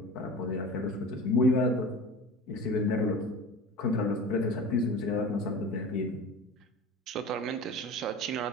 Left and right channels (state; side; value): normal; both; correlation 0.36